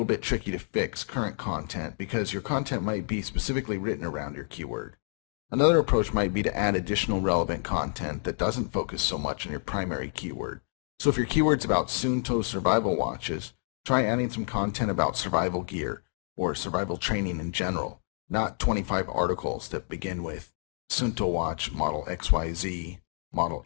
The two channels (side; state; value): right; silent; digital silence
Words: bit tricky to fix current content because your content might be specifically written around your keyword. Another approach might be to add additional relevant content that doesn't focus so much on your primary keyword. So if your keyword's about Suunto survival watches, try adding some content about survival gear or survival training in general, not 25 articles that begin with Suunto watch model XYZ, model